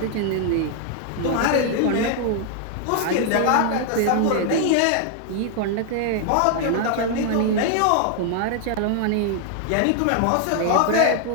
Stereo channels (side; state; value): both; different; correlation 0.00